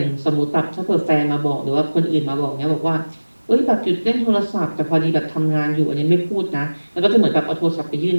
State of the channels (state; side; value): inverted; both; correlation -1.00